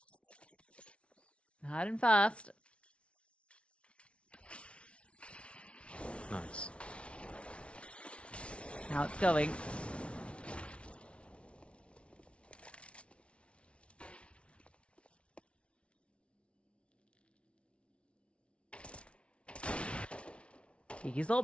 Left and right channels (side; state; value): right; late; 0.060 ms